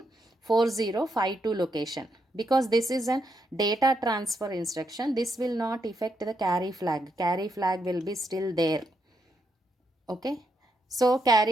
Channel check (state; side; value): normal; both; correlation 0.80